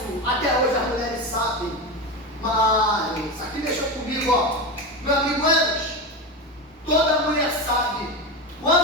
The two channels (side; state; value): both; normal; correlation 0.19